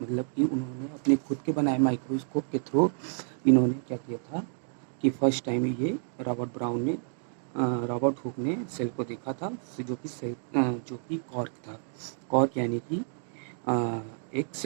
मतलब कि उन्होंने अपने खुद के बनाए माइक्रोस्कोप के थ्रू इन्होंने क्या किया था कि फर्स्ट टाइम ये रॉबर्ट हुक ने सेल को देखा था, जो कि कॉर्क था। कॉर्क यानी कि एक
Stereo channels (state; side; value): silent; left; digital silence